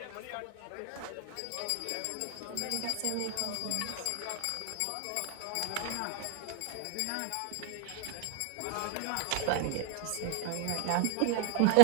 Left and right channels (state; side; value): different; both; correlation 0.00